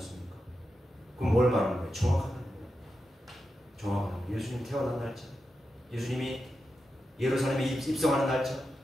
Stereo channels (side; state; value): both; normal; correlation 0.89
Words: 그럼 뭘 말하는 거예요? 정확하다는 거예요. 정확한 거예요. 예수님 태어난 날짜, 예수님이 예루살렘에 입성하는 날짜,